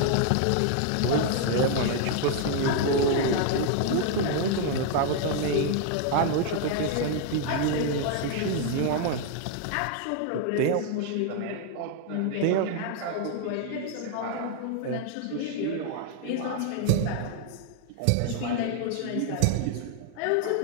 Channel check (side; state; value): both; different; correlation 0.00